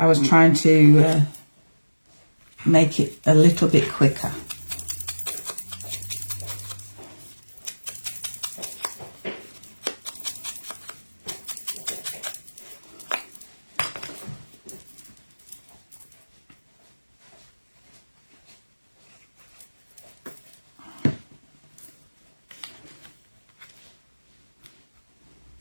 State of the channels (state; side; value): inverted; both; correlation -1.00